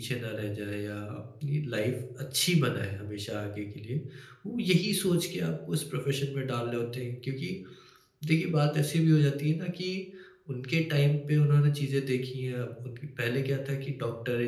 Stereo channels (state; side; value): identical; both; correlation 1.00